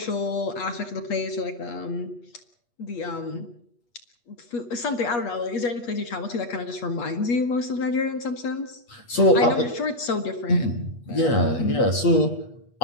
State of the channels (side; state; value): right; late; 8.4 ms